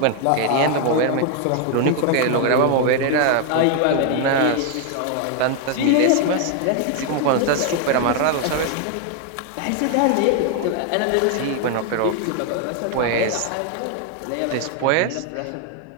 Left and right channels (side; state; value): both; different; correlation 0.00